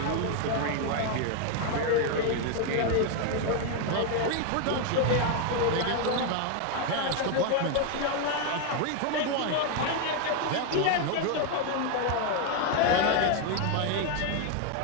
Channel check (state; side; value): different; both; correlation 0.01